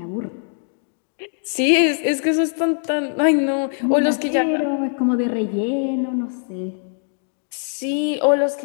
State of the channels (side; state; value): right; silent; digital silence